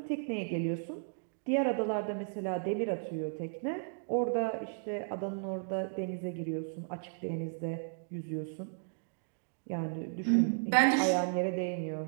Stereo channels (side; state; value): left; silent; digital silence